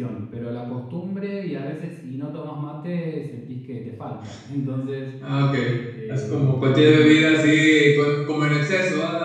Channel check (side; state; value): both; identical; correlation 1.00